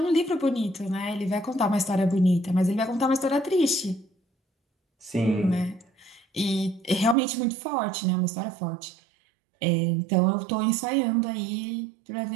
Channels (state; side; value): drops out; left; at 7.2 s